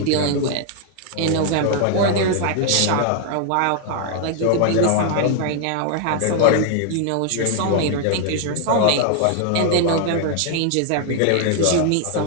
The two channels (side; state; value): both; different; correlation 0.00